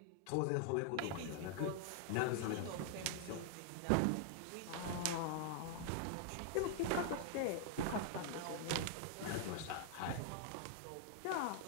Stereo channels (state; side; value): different; both; correlation -0.01